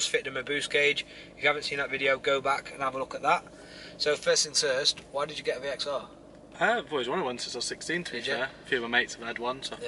fitted him a boost gauge. If you haven't seen that video, go back and have a look at that. So first things first, why did you get a VXR? I've always wanted one since I was 16, to be fair. A few of my mates have had one, so I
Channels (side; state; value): both; identical; correlation 1.00